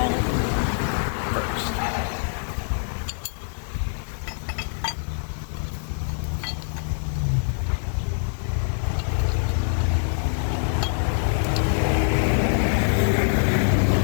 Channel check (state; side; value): silent; right; 57 dB below the other